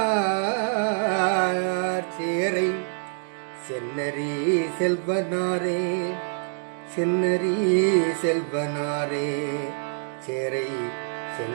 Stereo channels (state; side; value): silent; left; digital silence